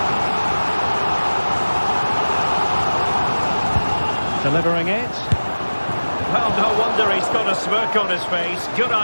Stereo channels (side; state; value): both; inverted; correlation -1.00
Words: Delivering it. Well, no wonder he's got a smirk on his face. Good